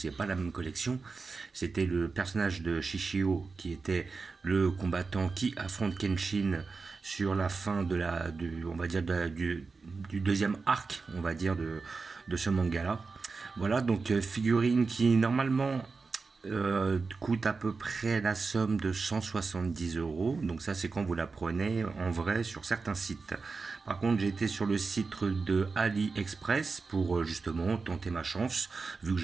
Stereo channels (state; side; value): quieter; left; 4.4 dB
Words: pas la même collection. C'était le personnage de Shishio, qui était le combattant qui affronte Kenshin sur la fin de on va dire du deuxième arc, on va dire, de ce manga-là. Voilà, donc figurine qui normalement coûte à peu près la somme de 170 euros. Donc ça, c'est quand vous la prenez en vrai sur certains sites. Par contre, j'ai été sur le site de AliExpress pour justement tenter ma chance, vu que